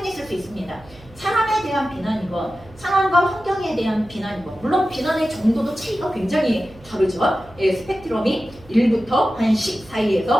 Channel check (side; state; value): right; noise; hum, 23 dB below the sound